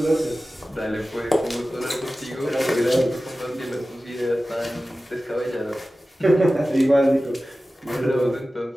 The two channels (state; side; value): normal; both; correlation 0.96